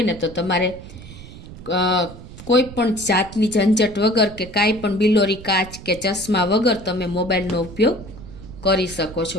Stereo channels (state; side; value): noise; right; rumble, 15 dB below the sound